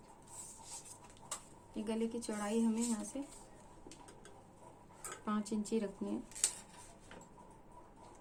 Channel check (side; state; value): both; identical; correlation 1.00